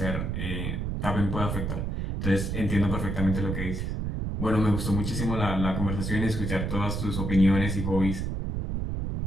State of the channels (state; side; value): noise; right; rumble, 2 dB below the sound